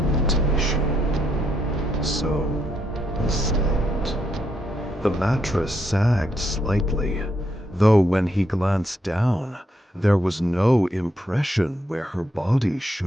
So he slept. The mattress sagged slightly, though when he glanced down, there was no impression where her body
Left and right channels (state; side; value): normal; both; correlation 0.77